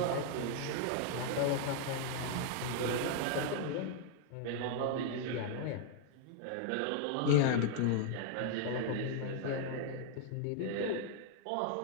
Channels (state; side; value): different; both; correlation -0.01